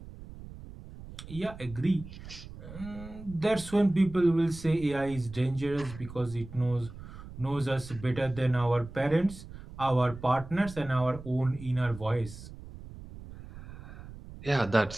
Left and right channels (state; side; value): noise; right; rumble, 15 dB below the sound